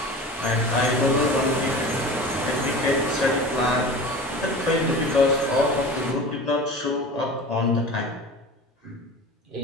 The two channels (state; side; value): normal; both; correlation 0.35